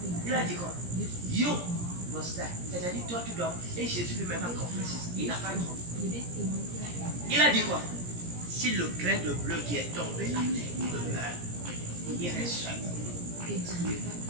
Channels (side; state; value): left; late; 17 ms